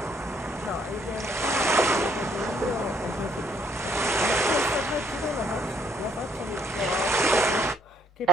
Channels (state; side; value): normal; both; correlation 0.68